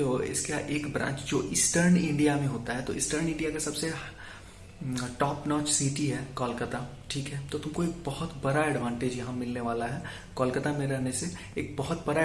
हो, इसका एक ब्रांच जो ईस्टर्न इंडिया में होता है। तो ईस्टर्न इंडिया का सबसे टॉप नॉच सिटी है कोलकाता। ठीक है, तो तुमको एक बहुत बड़ा एडवांटेज यहाँ मिलने वाला है कोलकाता में रहने से। एक बहुत बड़ा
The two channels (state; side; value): identical; both; correlation 1.00